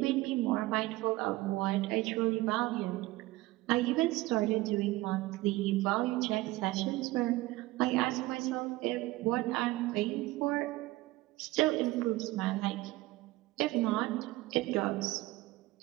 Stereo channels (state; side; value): quieter; left; 19.0 dB